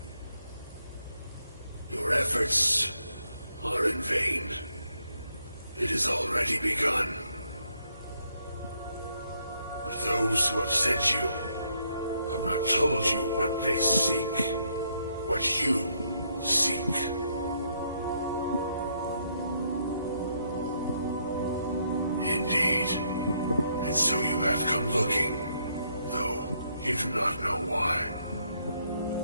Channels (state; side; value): inverted; both; correlation -0.73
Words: Your efforts are in vain. It has already begun. But those who have sent you have not told you what they seek, what you seek. Indeed. And so you have come looking, though you do not know why.